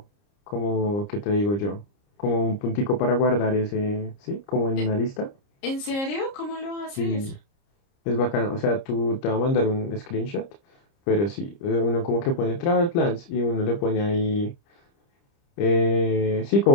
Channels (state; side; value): late; right; 30 ms